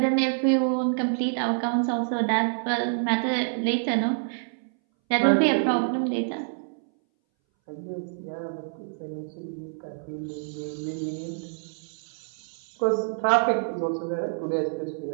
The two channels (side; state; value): left; silent; 60 dB below the other